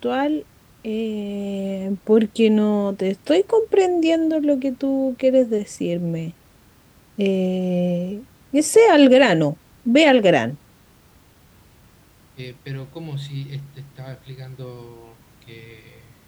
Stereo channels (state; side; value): identical; both; correlation 1.00